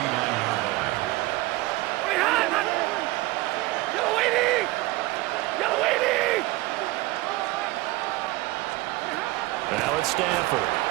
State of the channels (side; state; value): left; quieter; 19.8 dB